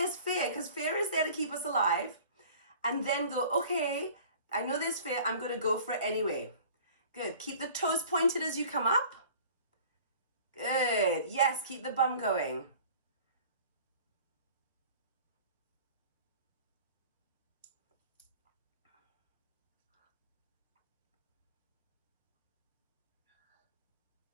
fear, because fear is there to keep us alive. And then go, okay, I know there's fear. I'm going to go for it anyway. Good. Keep the toes pointed as you come up. Good. Yes, keep the bum going.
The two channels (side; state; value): both; inverted; correlation -0.46